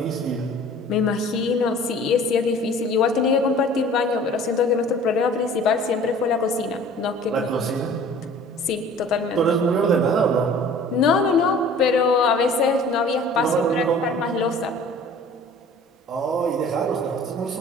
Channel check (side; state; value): both; normal; correlation 0.47